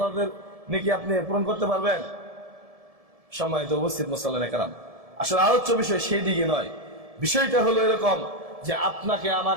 নাকি আপনি পূরণ করতে পারবেন? সম্মানিত উপস্থিত মুসল্লিনে কেরাম, আসলে আলোচ্য বিষয় সেই দিকে নয়। বিষয়টা হলো এরকম যে আপনাকে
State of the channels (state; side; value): late; left; 1.7 ms